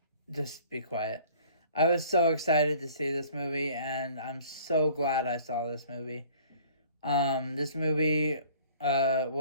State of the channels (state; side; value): inverted; both; correlation -0.52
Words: Just be quiet. I was so excited to see this movie, and I'm so glad I saw this movie. This movie,